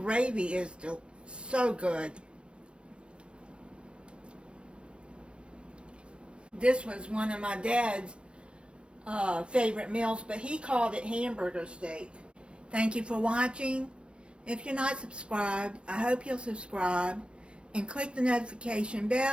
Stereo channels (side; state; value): left; late; 0.056 ms